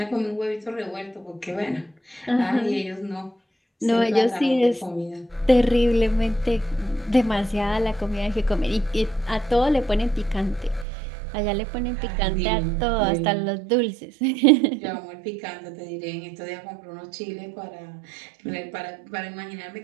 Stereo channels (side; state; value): left; drops out; at 10.9 s